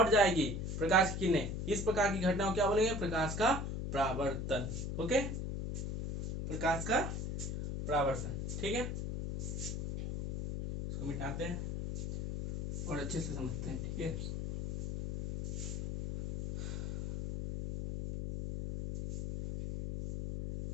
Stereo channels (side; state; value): left; noise; hum, 3 dB below the sound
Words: जाएगी प्रकाश की किरणें। इस प्रकार की घटना को क्या बोलेंगे, प्रकाश का परावर्तन। ओके, प्रकाश का परावर्तन, ठीक है। इसको मिटाते हैं और अच्छे से समझते हैं, ठीक है।